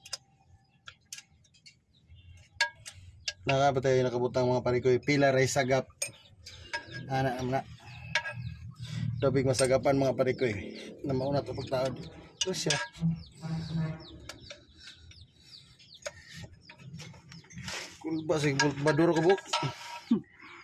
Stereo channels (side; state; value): both; identical; correlation 1.00